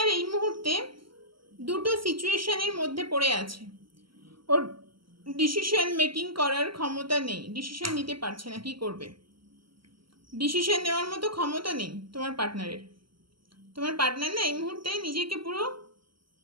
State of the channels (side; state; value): left; late; 0.74 ms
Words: এই মুহূর্তে দুটো সিচুয়েশনের মধ্যে পড়ে আছে। ওর ডিসিশন মেকিং করার ক্ষমতা নেই, ডিসিশন নিতে পারছে না, কি করবে। ডিসিশন নেওয়ার মতো ক্ষমতা নেই তোমার পার্টনারের। তোমার পার্টনার না এই মুহূর্তে নিজেকে পুরো